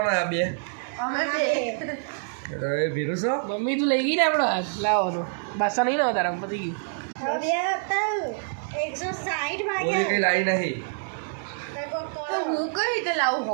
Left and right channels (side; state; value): left; silent; digital silence